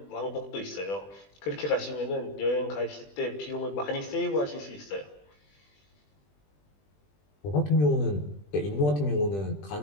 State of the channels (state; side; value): late; right; 20 ms